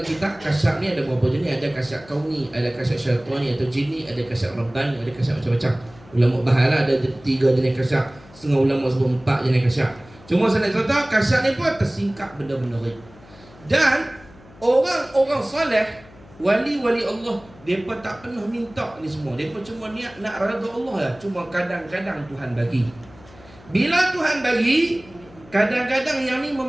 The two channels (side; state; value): left; noise; hum, 23 dB below the sound